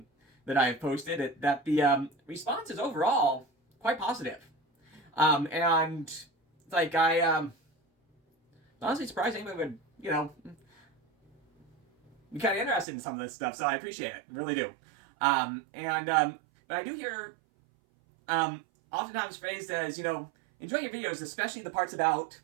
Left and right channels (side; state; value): left; drops out; at 12.9 s